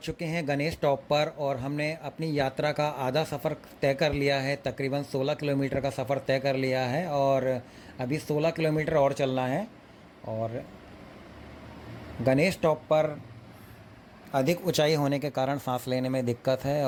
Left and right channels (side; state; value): both; identical; correlation 1.00